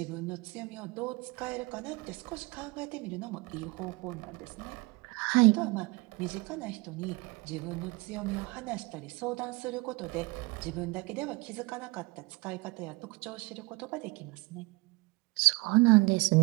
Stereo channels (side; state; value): left; quieter; 25.5 dB